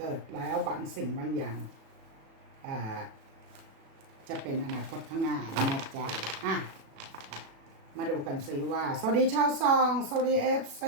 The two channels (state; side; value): late; left; 36 ms